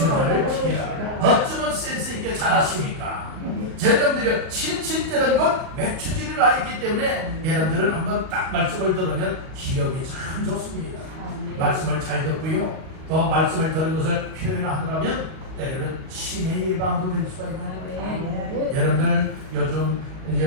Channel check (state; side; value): late; left; 38 ms